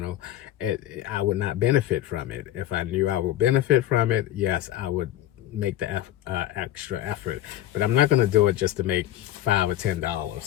I would not benefit from it. If I knew I would benefit from it, yes, I would make the extra effort. But I'm not going to do it just to make $5 or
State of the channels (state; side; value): quieter; right; 13.0 dB